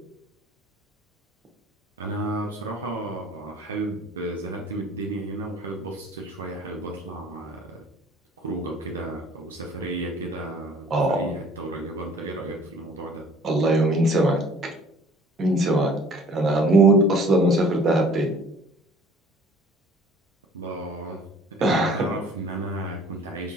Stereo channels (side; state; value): both; normal; correlation 0.51